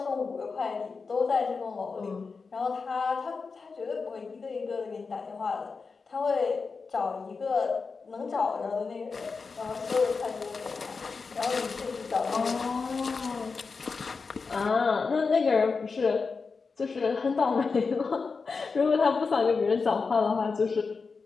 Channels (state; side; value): quieter; right; 4.7 dB